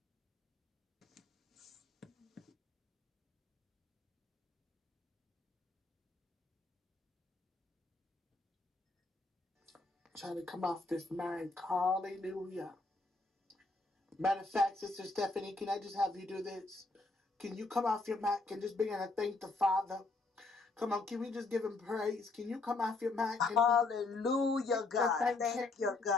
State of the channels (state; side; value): quieter; right; 3.4 dB